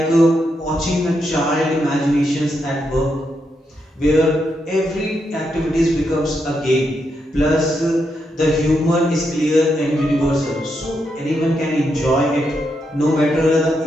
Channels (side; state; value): both; normal; correlation 0.82